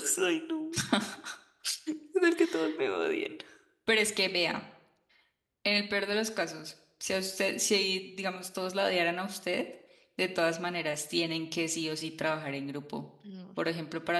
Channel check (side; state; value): both; identical; correlation 1.00